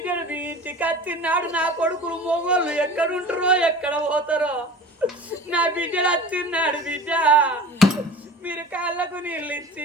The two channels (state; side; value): normal; both; correlation 0.38